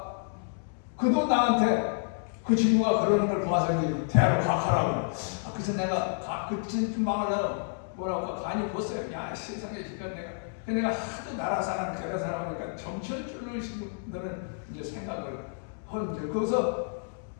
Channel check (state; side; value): silent; right; 58 dB below the other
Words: 그도 나한테 그 친구가 그러는 걸 봐서 대화로 각하라고. 그래서 내가 그쯤 망하려고 뭐라고 간이 벗어요. 야 세상에 지금 내가 하도 나라 사람 여러 사람이니까 정치줄을 신분들은 이제 생각을 하는데 거기서